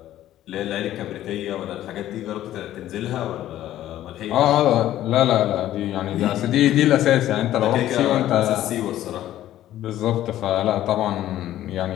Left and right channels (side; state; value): right; quieter; 13.2 dB